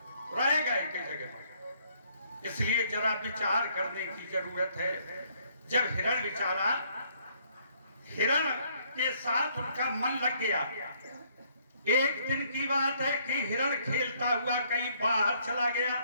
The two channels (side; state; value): both; inverted; correlation -0.67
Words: रहेगा एक ही जगह मन। इसलिए जरा विचार करने की जरूरत है। जब हिरण विचारा, हिरण के साथ उनका मन लग गया। एक दिन की बात है कि हिरण खेलता हुआ कहीं बाहर चला गया।